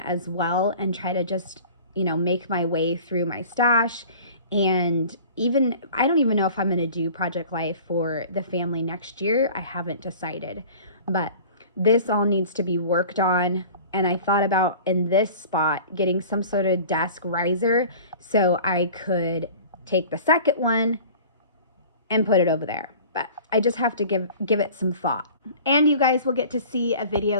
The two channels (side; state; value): both; inverted; correlation -0.43